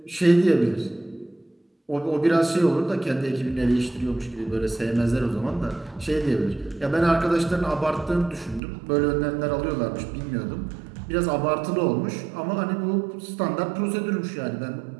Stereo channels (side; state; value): left; drops out; at 8.6 s